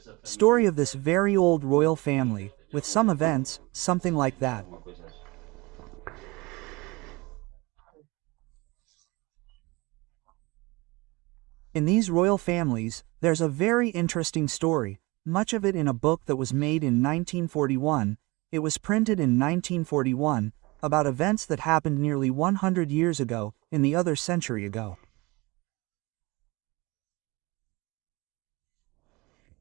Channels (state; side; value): quieter; left; 24.1 dB